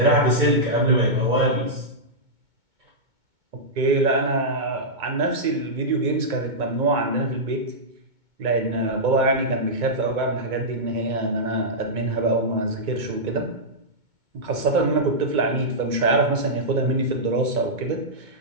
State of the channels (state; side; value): late; left; 2.2 ms